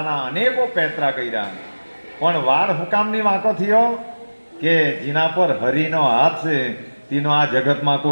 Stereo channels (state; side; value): inverted; both; correlation -1.00